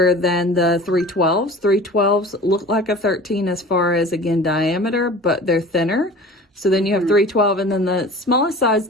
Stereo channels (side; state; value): both; normal; correlation 0.40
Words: than the 312s. 312s look like a 13 as far as, again, diameter, but they're thinner. So then you have 312, and then the smallest size